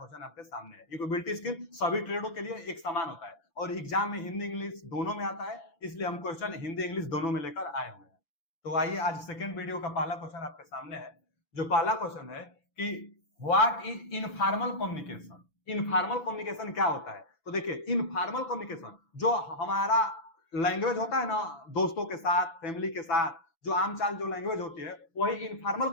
आपके सामने है। इंफॉर्मेबिलिटी स्किल सभी ट्रेडों के लिए एक समान होता है और एग्जाम में हिंदी इंग्लिश दोनों में आता है, इसलिए हम क्वेश्चन हिंदी इंग्लिश दोनों में लेकर आए हुए हैं। तो आइए आज सेकंड वीडियो का पहला क्वेश्चन आपके सामने है। जो पहला क्वेश्चन है कि what is informal communication. Informal communication क्या होता है? तो देखिए, इनफॉर्मल कम्युनिकेशन जो हमारा लैंग्वेज होता है ना, दोस्तों के साथ, फैमिली के साथ, जो आम चाल जो लैंग्वेज होती है, वही इनफॉर्मल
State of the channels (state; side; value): late; right; 6.9 ms